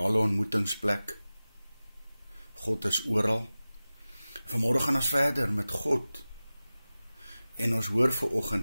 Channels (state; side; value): inverted; both; correlation -0.97